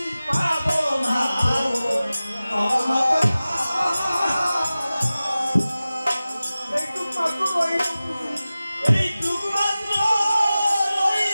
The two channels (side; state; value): both; inverted; correlation -0.96